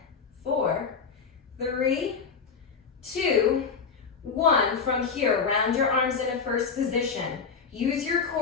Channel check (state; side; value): quieter; right; 5.6 dB